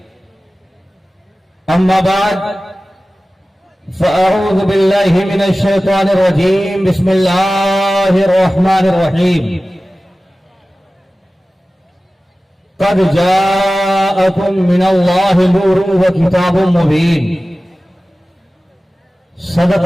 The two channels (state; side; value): normal; both; correlation 0.96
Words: أما بعد فأعوذ بالله من الشيطان الرجيم. بسم الله الرحمن الرحيم. قد جاءكم من الله نور وكتاب مبين.